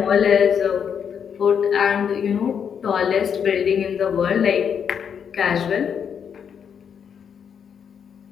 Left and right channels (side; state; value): right; quieter; 7.5 dB